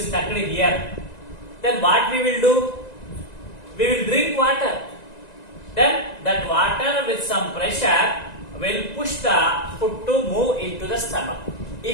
stuck here. Then what we will do? We will drink water. Then that water with some pressure will push the food to move into the stomach.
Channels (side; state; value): right; late; 1.9 ms